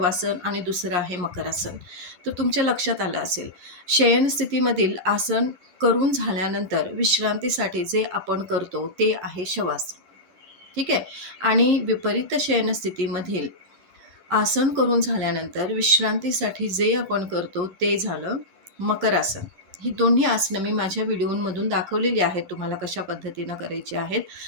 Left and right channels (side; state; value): left; late; 10 ms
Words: आणि दुसरं आहे मकरासन. तर तुमच्या लक्षात आलं असेल, शयन स्थितीमधील आसन करून झाल्यानंतर विश्रांतीसाठी जे आपण करतो ते आहे शवासन. ठीक आहे. आणि विपरीत शयन स्थितीमधील आसन करून झाल्यानंतर विश्रांतीसाठी जे आपण करतो ते झालं मकरासन. ही दोन्ही आसनं मी माझ्या व्हिडिओमधून दाखवलेली आहेत तुम्हाला कशा पद्धतीनं करायची आहेत.